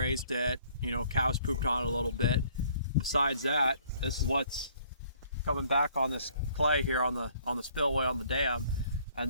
it, cows pooped on it a little bit. Besides that, this is what's coming back on this clay here on the spillway on the dam,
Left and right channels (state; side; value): inverted; both; correlation -0.60